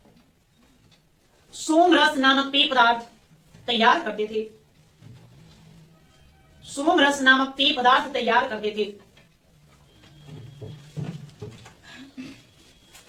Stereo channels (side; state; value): both; identical; correlation 1.00